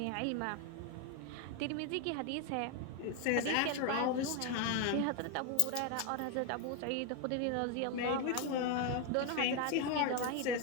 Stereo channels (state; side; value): different; both; correlation 0.01